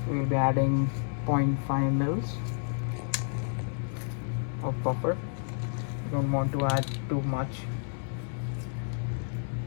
We'll be adding 0.5 mils of buffer. You don't want to add too much.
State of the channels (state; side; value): silent; right; digital silence